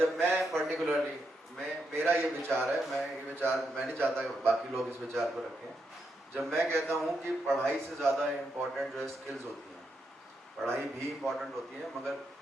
मैं पर्टिकुलरली मेरा ये विचार है, मैं नहीं चाहता कि बाकी लोग इस विचार को रखें। जब मैं कहता हूँ कि पढ़ाई से ज़्यादा इम्पोर्टेंट जो है स्किल्स होती हैं, पढ़ाई भी इम्पोर्टेंट होती है मगर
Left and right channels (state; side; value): normal; both; correlation 0.82